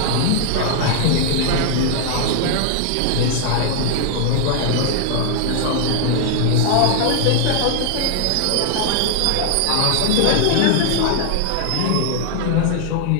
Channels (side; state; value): both; different; correlation 0.00